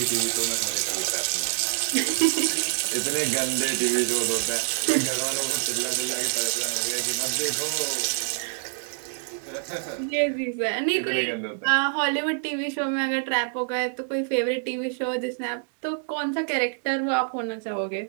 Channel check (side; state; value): left; silent; digital silence